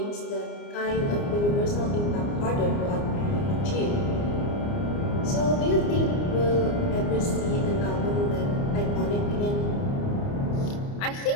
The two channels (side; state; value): right; late; 29 ms